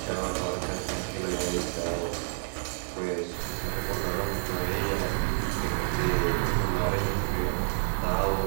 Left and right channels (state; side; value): silent; left; digital silence